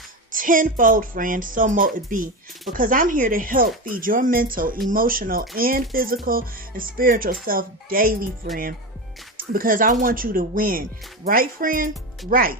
tenfold, friend, so mote it be, because I'm here to help feed your mental, emotional, and physical and spiritual self daily, friend, because I want you to win. Right, friend? Right.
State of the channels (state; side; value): normal; both; correlation 0.19